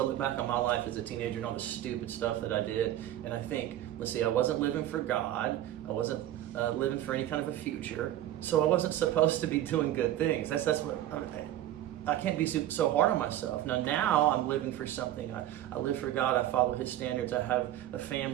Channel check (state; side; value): quieter; left; 13.0 dB